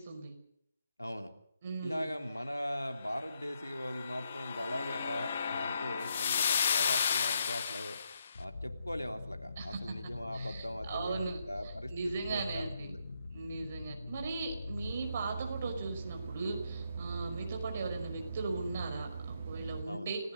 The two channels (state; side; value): inverted; both; correlation -0.80